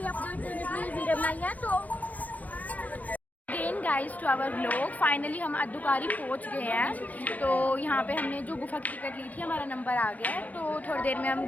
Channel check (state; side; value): late; right; 0.074 ms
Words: अपडेट देने के लिए वीडियो बनाई है। तो again guys to our vlog, finally हम अद्दुकारी पहुंच गए हैं। तो यहाँ पे हमने जो गुफा की टिकट ली थी, हमारा नंबर आ गया है। तो थोड़ी देर में हम